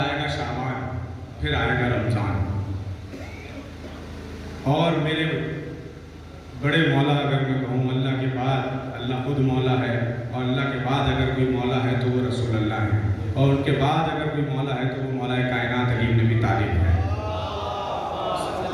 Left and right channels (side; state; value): both; identical; correlation 1.00